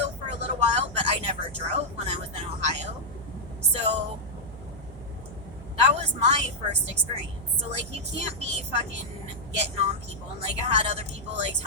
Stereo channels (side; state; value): both; normal; correlation -0.04